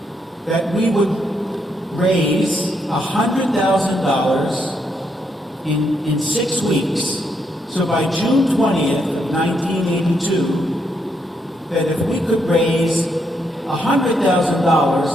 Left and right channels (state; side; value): normal; both; correlation 0.77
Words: that we would raise $100,000 in 6 weeks. So by June 20th of 1982, that if we could raise $100,000,